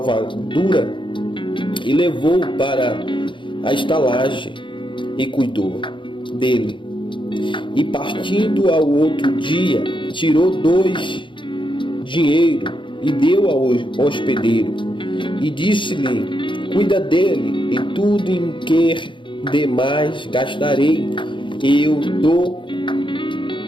e levou-o para a estalagem e cuidou dele. E partindo ao outro dia, tirou 2 dinheiro e deu ao hospedeiro, e disse-lhe: cuida dele, e tudo em que demais gastarei, eu dou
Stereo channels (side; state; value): right; late; 0.24 ms